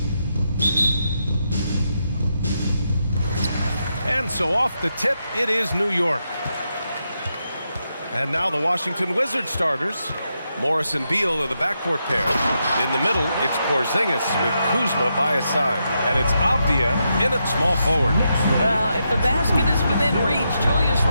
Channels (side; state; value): both; inverted; correlation -0.83